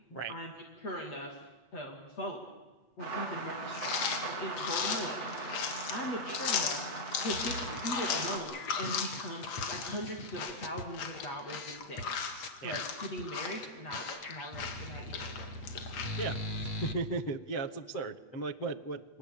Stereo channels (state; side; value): late; right; 8.2 ms